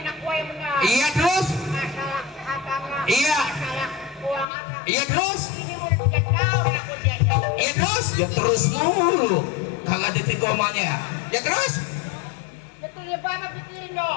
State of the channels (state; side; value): drops out; right; at 4.5 s